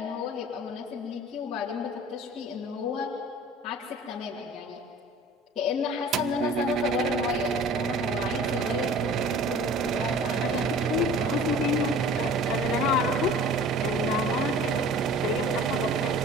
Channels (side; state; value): both; normal; correlation 0.45